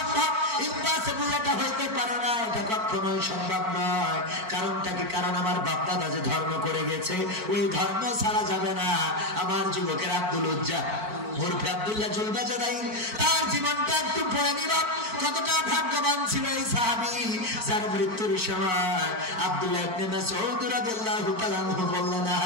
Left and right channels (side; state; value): left; late; 4.5 ms